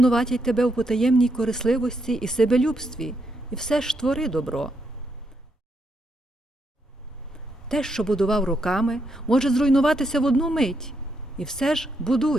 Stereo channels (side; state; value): both; normal; correlation 0.79